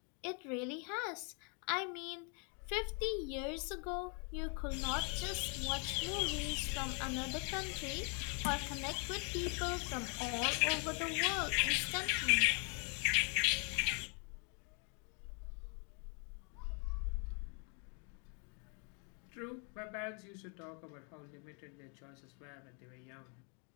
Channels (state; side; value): quieter; right; 37.6 dB